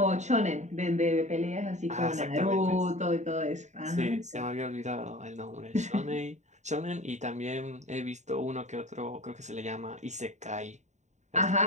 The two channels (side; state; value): left; late; 0.34 ms